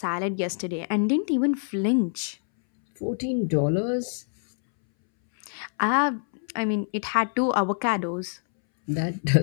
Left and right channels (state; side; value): silent; right; 61 dB below the other